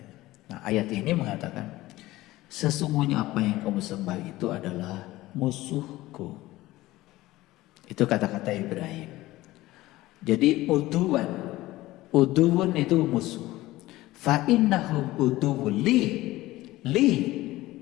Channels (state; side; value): quieter; right; 17.5 dB